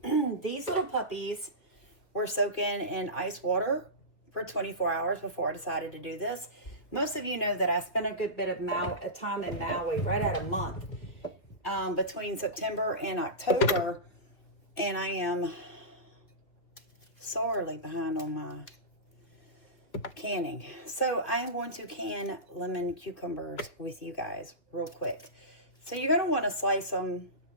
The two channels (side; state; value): right; late; 2.7 ms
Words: These little puppies were soaking in ice water for 24 hours before I decided to do this. Most of you know that I spent a good bit of time in Maui, right at a month, between September and October, and I am sorely behind on my canning. So I am going to can lemon cucumbers with you guys real quick. So you're going to want to slice them,